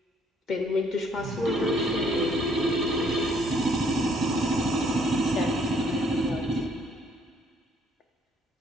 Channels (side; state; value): both; normal; correlation 0.64